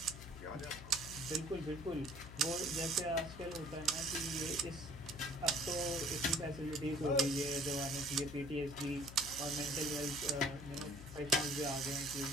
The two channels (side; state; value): left; noise; hum, 12 dB below the sound